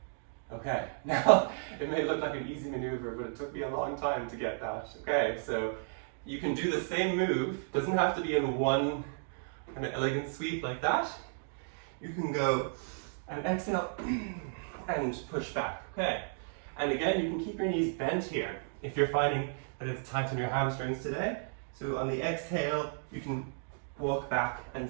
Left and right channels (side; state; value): left; silent; digital silence